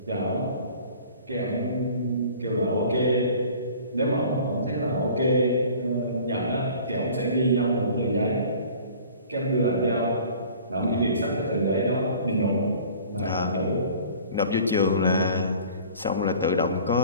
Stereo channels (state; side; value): inverted; both; correlation -0.47